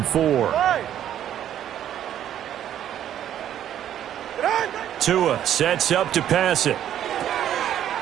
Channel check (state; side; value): quieter; left; 10.8 dB